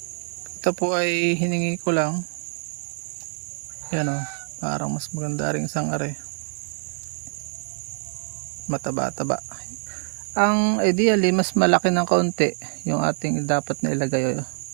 Ito po ay hiningi ko lang, yan o, parang mas maganda rin isang are, mataba-taba. Ang ideally mas malaki ng kaunti yung ating dapat na ilagay.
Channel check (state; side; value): silent; left; digital silence